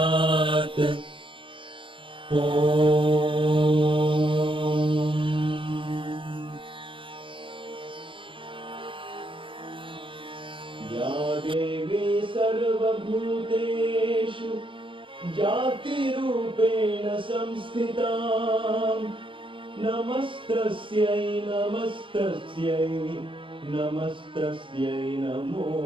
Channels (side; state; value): left; late; 0.25 ms